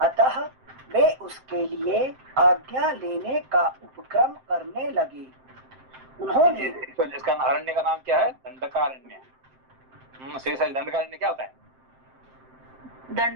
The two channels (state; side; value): late; left; 7.7 ms